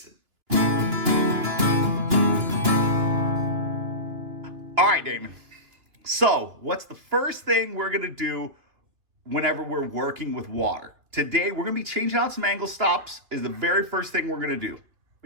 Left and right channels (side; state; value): left; late; 2.9 ms